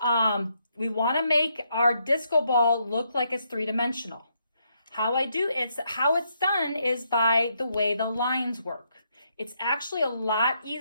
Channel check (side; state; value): both; inverted; correlation -0.76